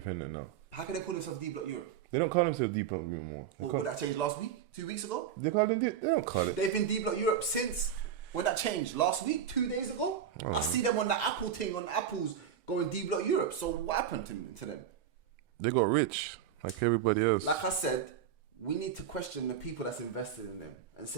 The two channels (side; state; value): left; quieter; 8.6 dB